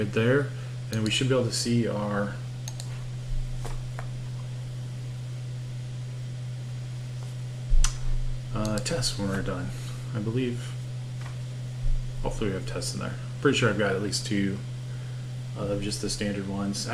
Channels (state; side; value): identical; both; correlation 1.00